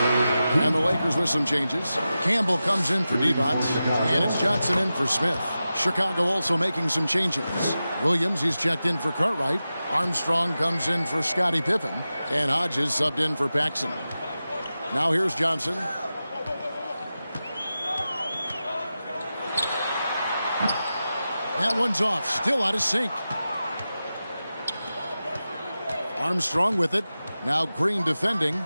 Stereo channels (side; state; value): both; inverted; correlation -0.93